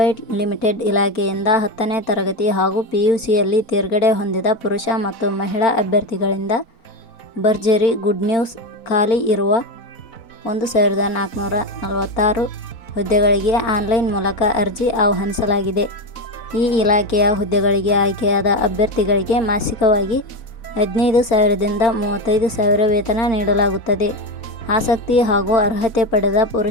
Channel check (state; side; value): late; right; 4.4 ms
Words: ಲಿಮಿಟೆಡ್ ಇಲಾಖೆಯಿಂದ 10ನೇ ತರಗತಿ ಹಾಗೂ PUCಯಲ್ಲಿ ತೇರ್ಗಡೆ ಹೊಂದಿದ ಪುರುಷ ಮತ್ತು ಮಹಿಳಾ ಅಭ್ಯರ್ಥಿಗಳಿಂದ ಭರ್ಜರಿ ಗುಡ್ ನ್ಯೂಸ್. ಖಾಲಿ ಇರುವ 1446 ಹುದ್ದೆಗಳಿಗೆ ಆನ್ಲೈನ್ ಮೂಲಕ ಅರ್ಜಿ ಆಹ್ವಾನಿಸಲಾಗಿದೆ. ಈ ಇಲಾಖೆಯ ಹುದ್ದೆಗಳಿಗೆ ಆಯ್ಕೆಯಾದ ಅಭ್ಯರ್ಥಿಗಳಿಗೆ ಮಾಸಿಕವಾಗಿ 15,000ದಿಂದ 35,000 ವೇತನ ನೀಡಲಾಗುತ್ತದೆ. ಆಸಕ್ತಿ ಹಾಗೂ ಅರ್ಹತೆ ಪಡೆದ